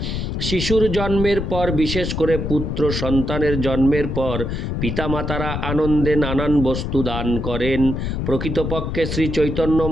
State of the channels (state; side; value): noise; left; rumble, 3 dB below the sound